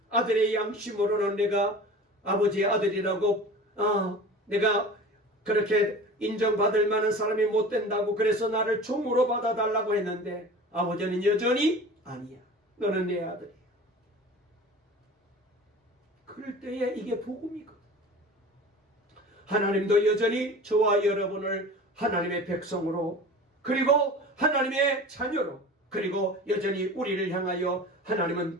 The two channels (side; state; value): both; normal; correlation 0.38